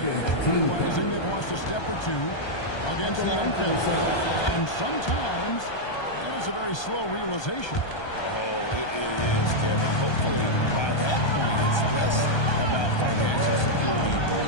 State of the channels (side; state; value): right; late; 1.2 ms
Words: realizing they've lost a step or two against the unfit. And sometimes that is a very slow realization. Oh, it is, Kevin. Hopefully, by that point, it's less about financial security